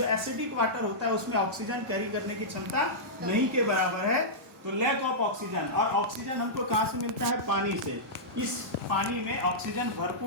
एसिडिक वाटर होता है उसमें ऑक्सीजन कैरी करने की क्षमता नहीं के बराबर है, तो लैक ऑफ ऑक्सीजन। और ऑक्सीजन हमको कहाँ से मिलता है? पानी से। इस पानी में ऑक्सीजन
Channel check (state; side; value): normal; both; correlation -0.13